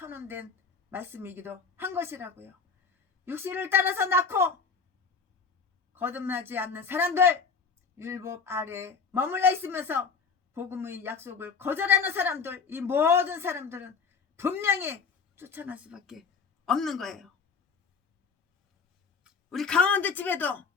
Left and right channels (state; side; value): quieter; right; 5.4 dB